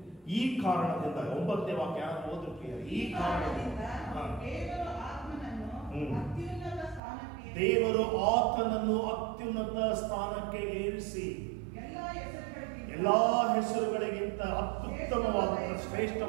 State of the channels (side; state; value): left; drops out; at 7.0 s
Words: ಈ ಕಾರಣದಿಂದ 9ನೇ ವಾಕ್ಯ ಓದು ಪ್ರಿಯ. ಈ ಕಾರಣದಿಂದ ದೇವರು ಆತನನ್ನು ಅತ್ಯುನ್ನತ ಸ್ಥಾನಕ್ಕೆ ಏರಿಸಿ ಎಲ್ಲಾ ಹೆಸರುಗಳಿಗಿಂತ ಅತ್ಯುತ್ತಮವಾದಂಥ